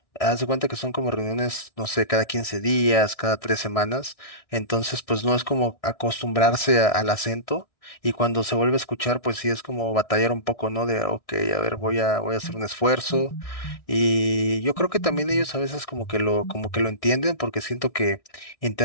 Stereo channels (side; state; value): right; late; 1.6 ms